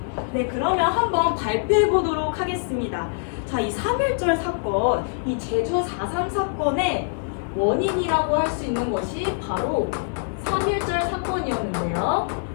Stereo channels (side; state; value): right; silent; 56 dB below the other